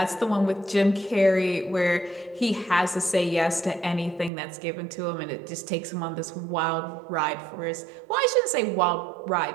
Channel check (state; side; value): drops out; left; at 4.3 s